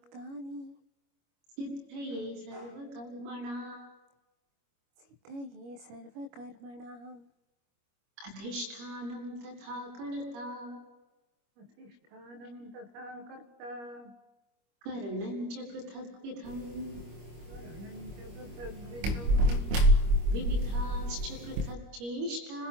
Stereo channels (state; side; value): late; left; 25 ms